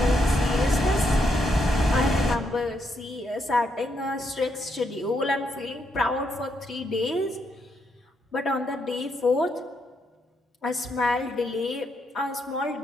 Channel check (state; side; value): normal; both; correlation 0.78